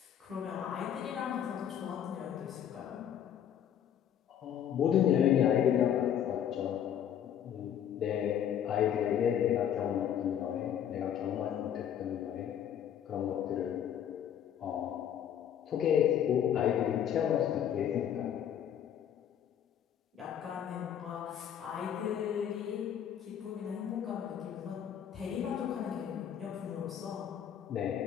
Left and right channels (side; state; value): right; quieter; 9.6 dB